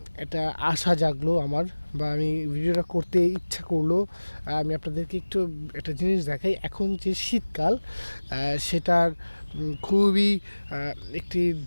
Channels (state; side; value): inverted; both; correlation -1.00